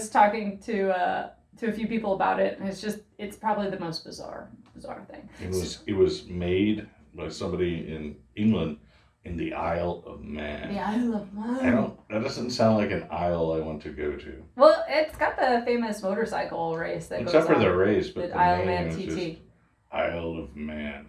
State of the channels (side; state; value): both; identical; correlation 1.00